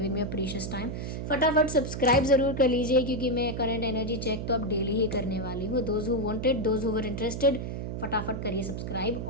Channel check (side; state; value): right; noise; hum, 5 dB below the sound